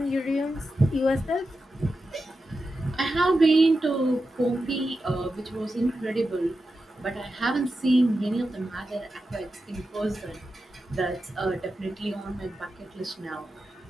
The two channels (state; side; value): normal; both; correlation 0.90